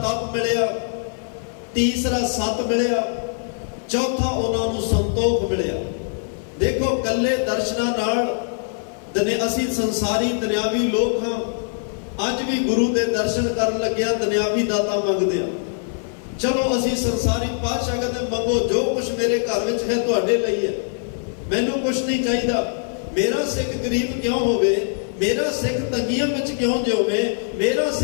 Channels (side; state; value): right; silent; 56 dB below the other